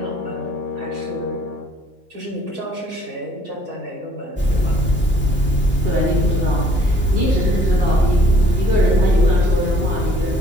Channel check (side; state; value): both; normal; correlation 0.60